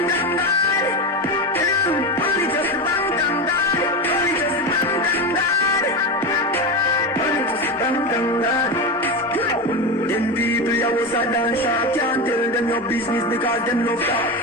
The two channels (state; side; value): normal; both; correlation 0.18